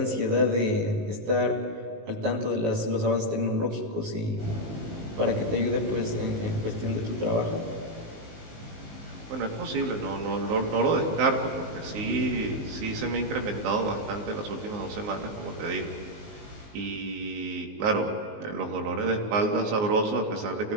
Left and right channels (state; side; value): late; left; 19 ms